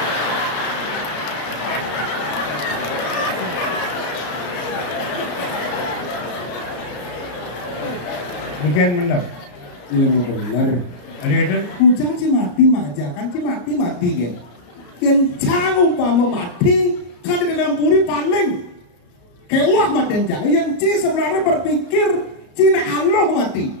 Bukan benar. Ilmu benar. Ada itu? Ujang si mati majakan si mati kan. Kencang umpama mati kan di dalam puri paling kewah mati kencang. Yang ci sebenarnya berpikir Cina Allah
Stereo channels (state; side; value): late; right; 34 ms